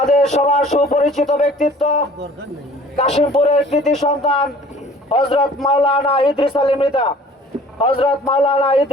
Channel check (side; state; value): both; normal; correlation 0.50